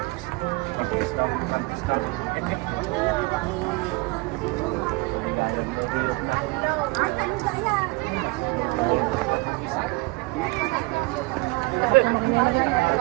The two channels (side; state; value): left; quieter; 25.5 dB